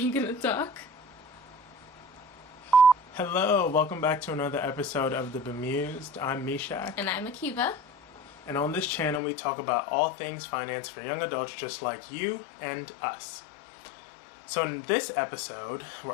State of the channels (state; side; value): drops out; right; at 9.2 s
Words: gonna talk? Hello, welcome back to another episode of the Bemused. I'm Mishak. And I'm Akiva. And on this channel we talk about all things finance for young adults just like you and us. So in this episode,